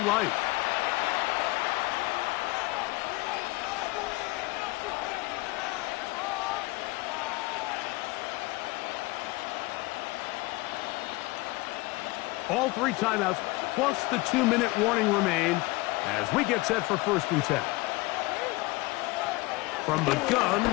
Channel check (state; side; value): quieter; right; 22.1 dB